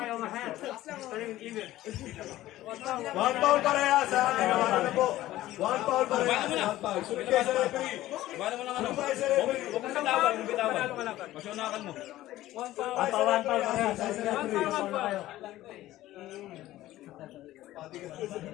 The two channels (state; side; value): quieter; right; 15.3 dB